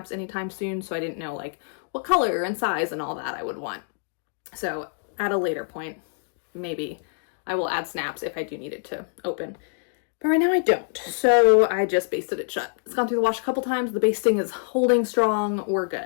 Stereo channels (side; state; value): right; silent; digital silence